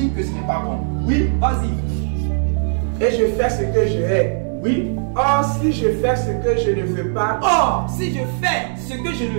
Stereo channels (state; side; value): silent; left; 66 dB below the other